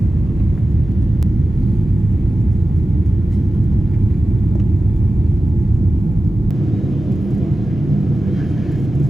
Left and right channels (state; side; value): normal; both; correlation 0.94